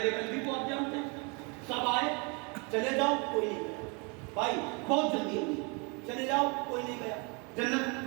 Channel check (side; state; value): left; quieter; 32.1 dB